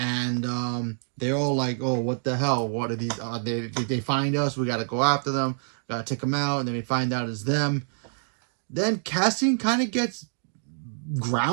they're all like, oh, what the hell? What are these? Did they find us? We got to go after them. Got to take them out. And then we find out it's them. Then Cassian kind of gets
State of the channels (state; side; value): silent; left; digital silence